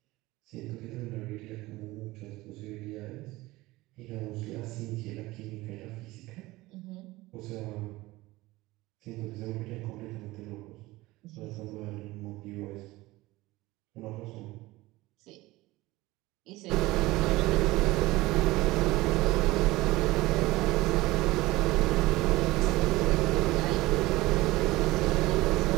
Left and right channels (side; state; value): left; quieter; 19.4 dB